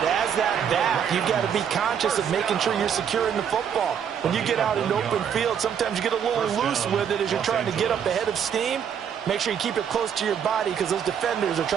as that back, you've got to be conscious of making sure you're securing the football. When you get out in open field, sometimes you get a little loose with it as you're trying to get up ahead of steam. Make sure you keep it close to your body because those defenders are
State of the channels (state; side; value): quieter; left; 8.1 dB